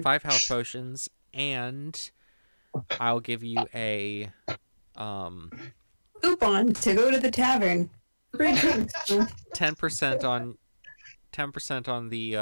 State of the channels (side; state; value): both; inverted; correlation -1.00